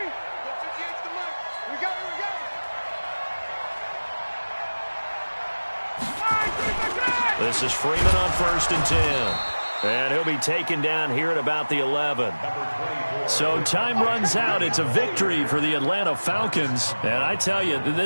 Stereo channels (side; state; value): both; inverted; correlation -1.00